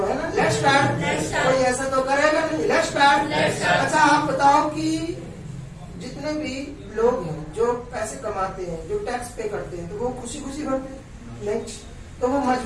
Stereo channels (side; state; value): both; identical; correlation 1.00